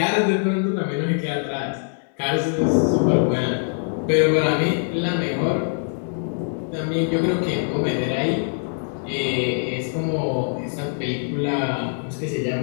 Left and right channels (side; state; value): right; silent; 63 dB below the other